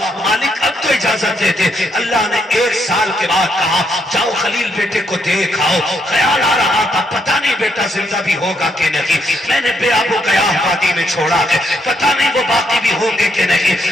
مالک اب تو اجازت دیتے. اللہ نے 1 سال کے بعد کہا جاؤ خلیل بیٹے کو دیکھ آؤ. خیال آ رہا تھا پتہ نہیں بیٹا زندہ بھی ہوگا کہ نہیں, میں نے بے آب و گیاہ وادی میں چھوڑا ہے, پتہ نہیں وہ باقی بھی ہوں گے کہ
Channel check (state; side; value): normal; both; correlation 0.76